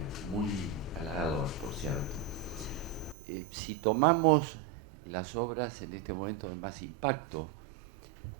muy halagador, por cierto. Si tomamos las obras en este momento de más impacto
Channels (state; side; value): drops out; left; at 3.2 s